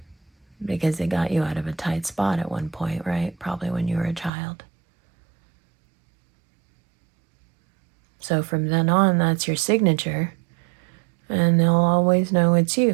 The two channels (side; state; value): left; drops out; at 4.3 s